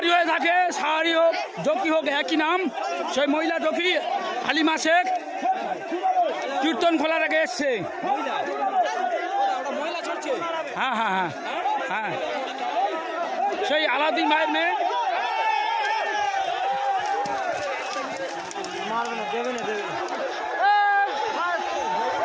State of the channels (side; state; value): both; identical; correlation 1.00